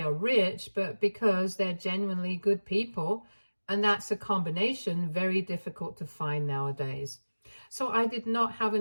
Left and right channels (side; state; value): both; inverted; correlation -1.00